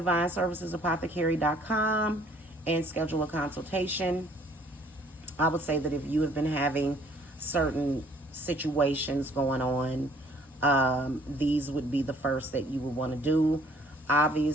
and schedule a consultation. I would say that if you have been having certain situations going on, these would be the first that you would want to do.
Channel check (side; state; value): both; normal; correlation 0.59